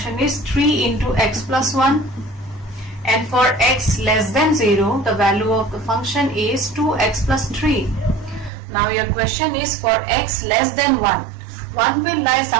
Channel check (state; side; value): drops out; left; at 8.5 s